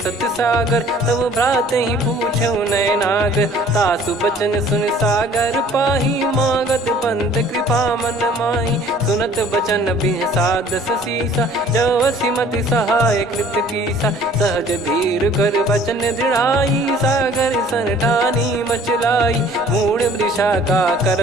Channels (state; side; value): normal; both; correlation 0.53